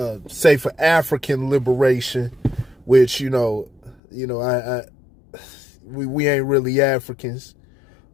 say for African liberation, which we ain't really Africans.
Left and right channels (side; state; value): right; drops out; at 4.0 s